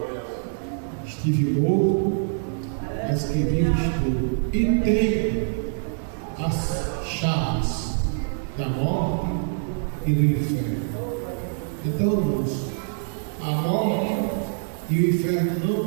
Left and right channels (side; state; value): left; silent; digital silence